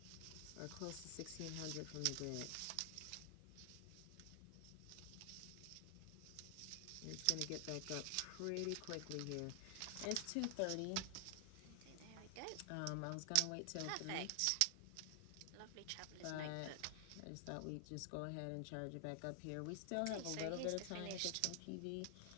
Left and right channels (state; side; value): different; both; correlation 0.00